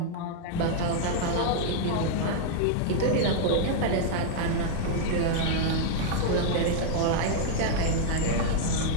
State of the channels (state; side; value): different; both; correlation -0.01